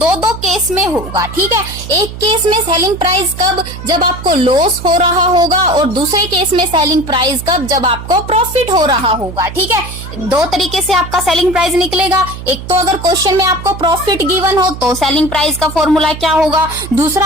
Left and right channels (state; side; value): noise; right; hum, 11 dB below the sound